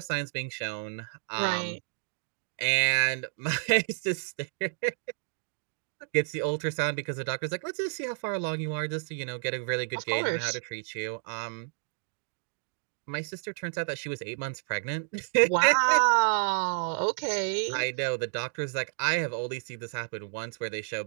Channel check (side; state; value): left; silent; digital silence